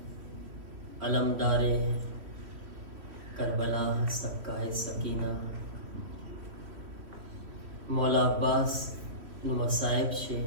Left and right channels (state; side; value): late; left; 3.1 ms